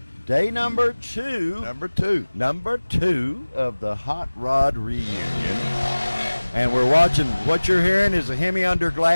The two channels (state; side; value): inverted; both; correlation -1.00